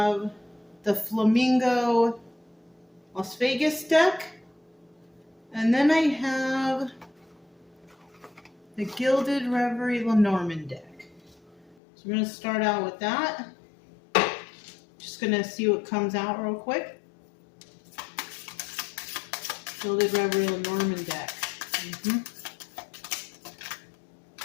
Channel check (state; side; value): drops out; right; at 11.8 s